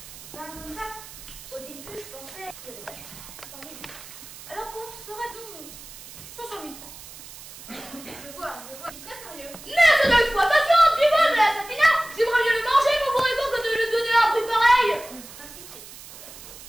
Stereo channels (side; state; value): right; noise; hiss, 16 dB below the sound